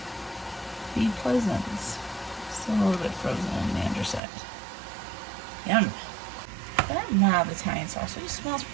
Be pleasant. Still a little bit frozen on the underside. Yum. That mild Italian sausage smells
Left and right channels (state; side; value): drops out; left; at 4.2 s